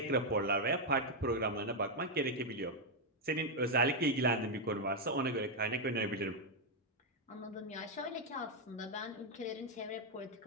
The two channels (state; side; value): normal; both; correlation 0.01